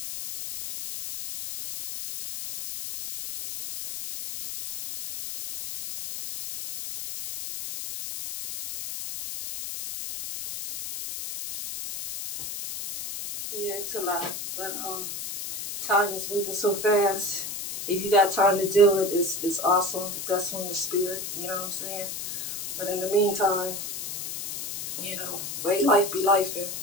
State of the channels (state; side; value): noise; left; hiss, 7 dB below the sound